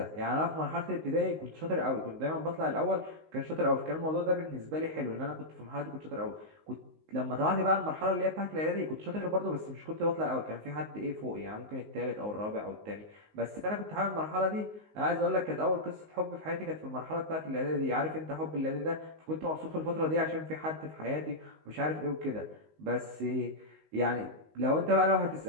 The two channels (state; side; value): late; left; 19 ms